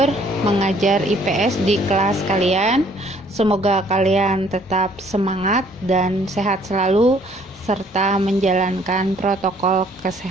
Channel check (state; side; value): normal; both; correlation 0.61